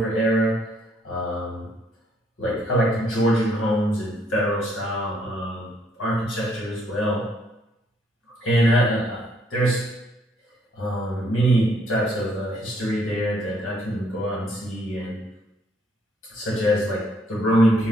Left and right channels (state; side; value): normal; both; correlation 0.68